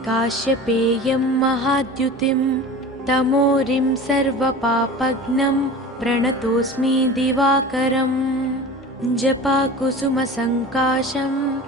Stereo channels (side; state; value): both; normal; correlation 0.36